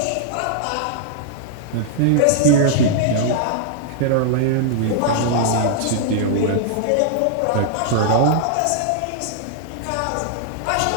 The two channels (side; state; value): both; different; correlation -0.01